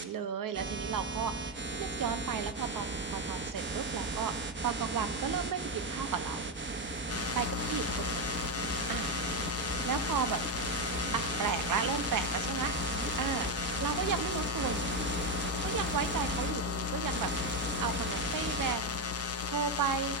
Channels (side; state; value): both; normal; correlation 0.08